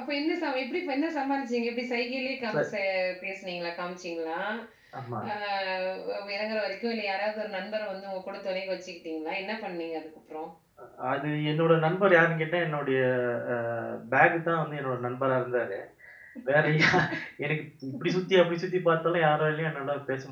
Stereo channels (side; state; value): both; identical; correlation 1.00